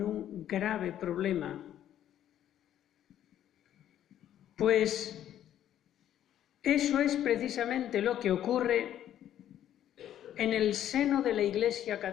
un grave problema, pues eso es precisamente lo que ocurre en el seno de la Iglesia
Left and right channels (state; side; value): quieter; right; 11.2 dB